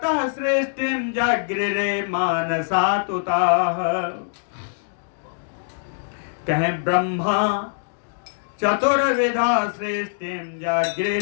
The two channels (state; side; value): silent; right; digital silence